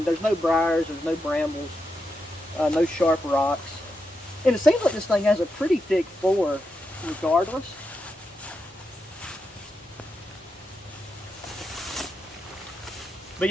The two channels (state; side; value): normal; both; correlation 0.86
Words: there's no briars, there's no brambles, no sharp rocks. And it seems like this thing has a pretty thick floor regardless. But